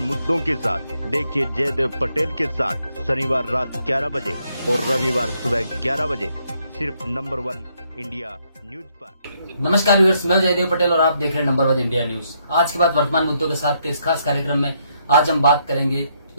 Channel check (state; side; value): inverted; both; correlation -0.74